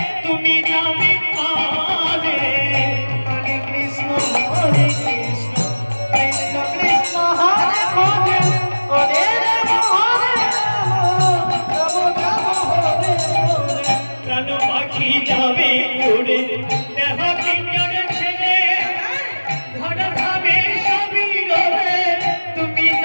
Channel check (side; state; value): both; inverted; correlation -1.00